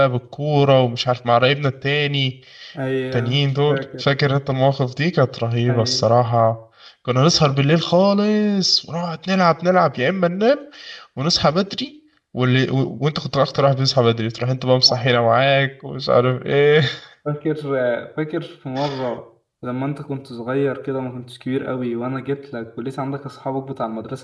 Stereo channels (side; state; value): both; identical; correlation 1.00